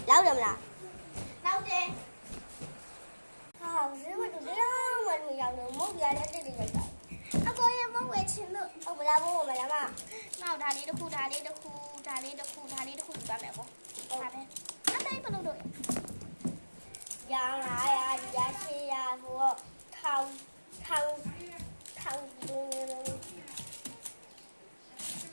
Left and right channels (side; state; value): both; inverted; correlation -1.00